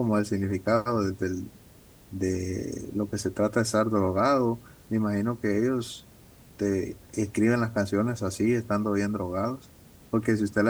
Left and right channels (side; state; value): both; identical; correlation 1.00